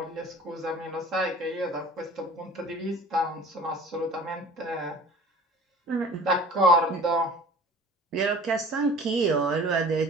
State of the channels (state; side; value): normal; both; correlation 0.44